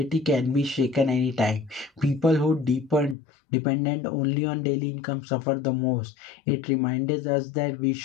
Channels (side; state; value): right; drops out; at 3.2 s